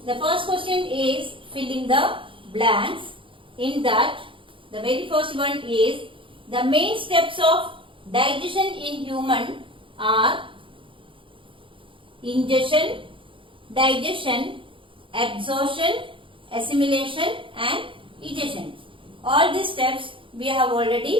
The first question is fill in the blanks. In that, the very first one is the main steps of digestion in human are ingestion, digestion, absorption, assimilation and egestion. All these steps we have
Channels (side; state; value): left; late; 0.25 ms